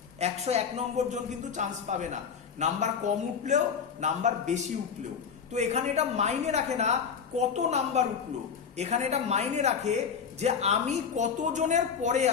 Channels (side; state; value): right; quieter; 6.7 dB